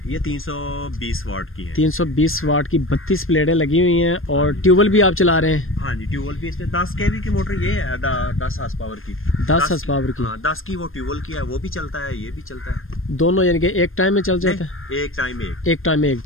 ये 320 वाट की है। 320 वाट की 32 प्लेटें लगी हुई हैं। और ट्यूबवेल भी आप चला रहे हैं? हाँ जी, ट्यूबवेल भी इसमें 10 kV की मोटर, ये है 10 हार्स पावर की। 10 हार्स पावर की? हाँ, 10 की वो ट्यूबवेल की है, वो भी चलता है, ये भी चलता है। दोनों यानी कि एक टाइम में चल जाता है? एक टाइम में एक टाइम में एक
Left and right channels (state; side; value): late; right; 0.60 ms